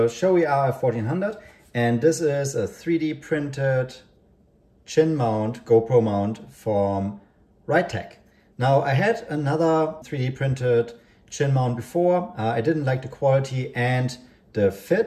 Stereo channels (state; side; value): identical; both; correlation 1.00